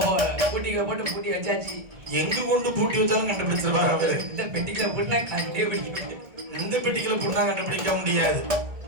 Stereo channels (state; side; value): late; left; 2.3 ms